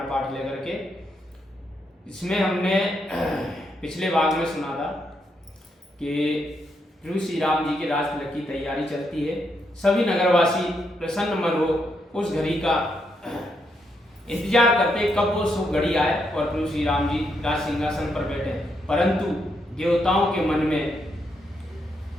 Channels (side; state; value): both; normal; correlation 0.79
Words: पाठ लेकर के। इसमें हमने पिछले भाग में सुना था कि प्रभु श्री राम जी के राज तिलक की तैयारी चलती है। सभी नगरवासी प्रसन्न मन हो उस घड़ी का इंतजार करते कब वो शुभ घड़ी आए और प्रभु श्री राम जी राज सिंहासन पर बैठे। परंतु देवताओं के मन में